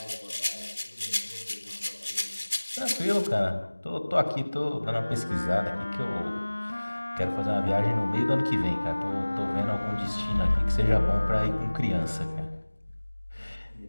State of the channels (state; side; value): inverted; both; correlation -1.00